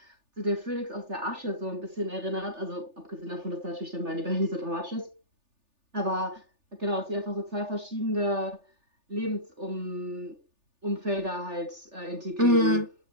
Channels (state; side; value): late; left; 3.4 ms